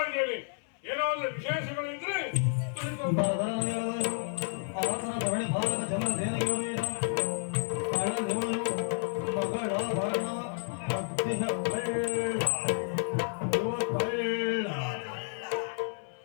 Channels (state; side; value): silent; right; 57 dB below the other